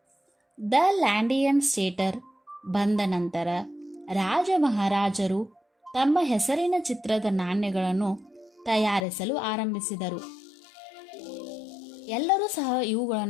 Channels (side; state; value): right; drops out; at 9.1 s